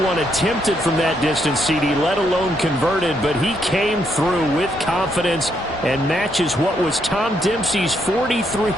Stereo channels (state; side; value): normal; both; correlation 0.75